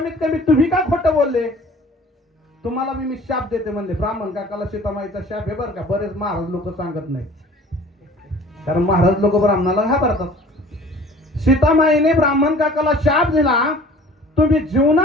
कमी तुम्ही का खोटं बोलले? तुम्हाला मी शाप देते म्हणले. ब्राह्मण काकाला सीतामाईचा शाप आहे बरं का, बरेच महाराज लोक सांगत नाही, कारण महाराज लोक ब्राह्मणाला घाबरतात. सीतामाईने ब्राह्मण काकाला शाप दिला, तुम्ही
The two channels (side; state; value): both; normal; correlation 0.48